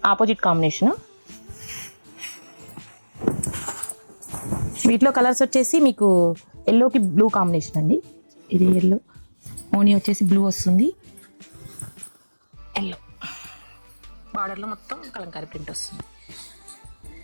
Opposite combination. వీటిలో కలర్స్ వచ్చేసి మీకు ఎల్లోకి బ్లూ కాంబినేషన్ అండి. ఇది ఎల్లో. ఓనీ వచ్చేసి బ్లూ వస్తుంది. ఎల్లో బార్డర్లో మొత్తం కలంకారీ ప్రింట్ వస్తుంది.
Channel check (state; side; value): inverted; both; correlation -1.00